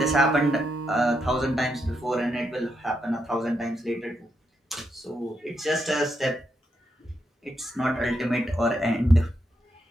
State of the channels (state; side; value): normal; both; correlation 0.81